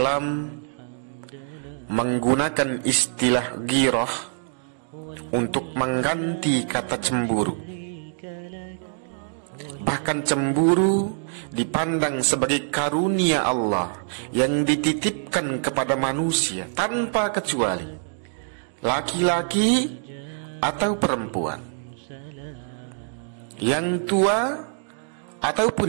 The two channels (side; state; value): left; silent; digital silence